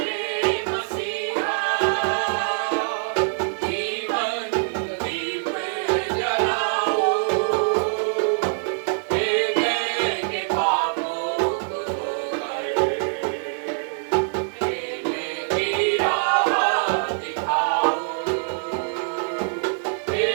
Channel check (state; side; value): silent; left; digital silence